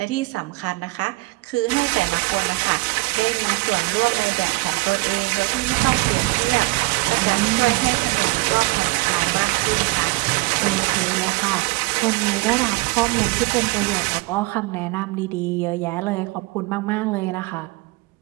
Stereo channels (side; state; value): left; quieter; 23.1 dB